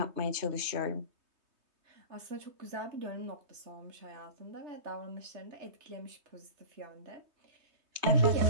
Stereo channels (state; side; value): late; left; 3.2 ms